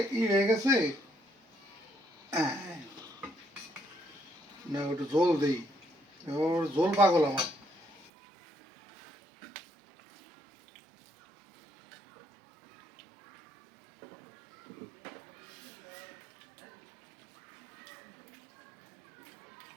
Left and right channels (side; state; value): left; drops out; at 8.1 s